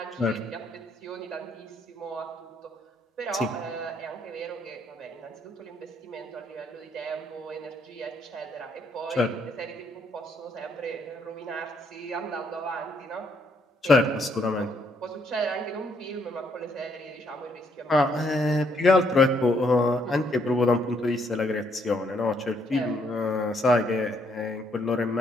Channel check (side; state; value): both; normal; correlation 0.71